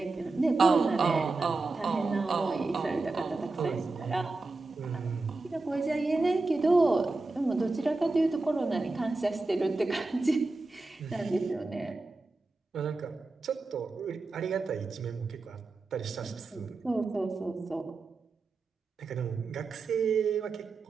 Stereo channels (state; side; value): quieter; left; 3.5 dB